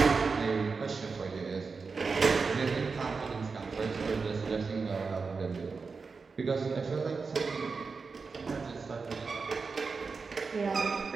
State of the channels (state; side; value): quieter; left; 4.7 dB